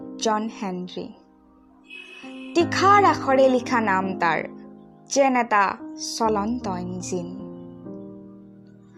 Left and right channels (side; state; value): both; identical; correlation 1.00